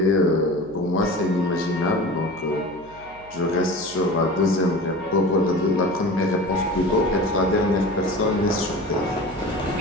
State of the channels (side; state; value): right; noise; hum, 23 dB below the sound